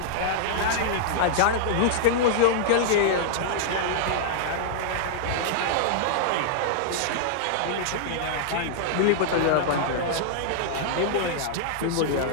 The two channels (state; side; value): different; both; correlation -0.02